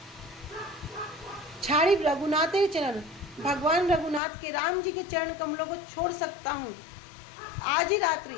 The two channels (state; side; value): drops out; right; at 4.2 s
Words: छाड़ी रघुनाथ चरण, भगवान रघुनाथ के राम जी के चरण कमलों को छोड़ सकता हूँ आज ही